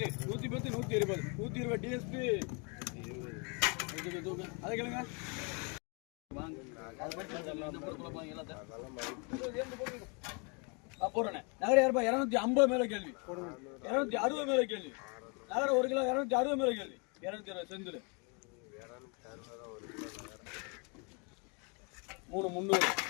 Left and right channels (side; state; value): right; quieter; 34.0 dB